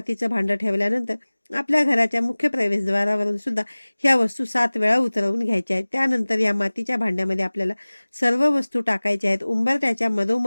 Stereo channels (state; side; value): inverted; both; correlation -1.00